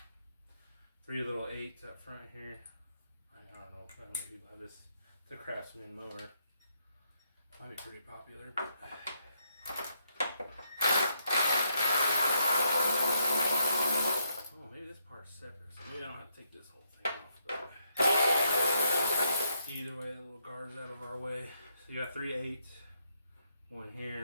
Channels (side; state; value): both; inverted; correlation -0.76